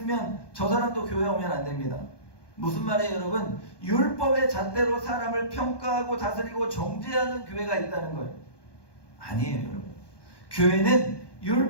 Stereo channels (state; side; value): late; right; 1.2 ms